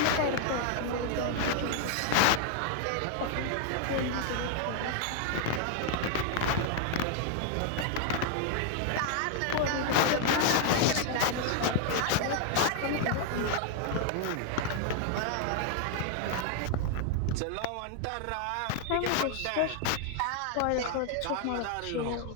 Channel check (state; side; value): different; both; correlation 0.00